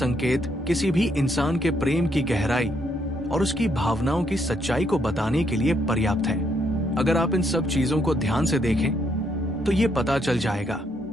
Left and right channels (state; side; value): normal; both; correlation 0.74